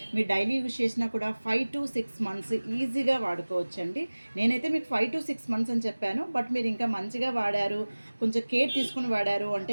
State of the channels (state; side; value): inverted; both; correlation -1.00